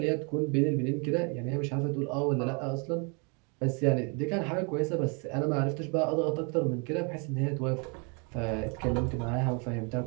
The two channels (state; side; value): quieter; left; 35.2 dB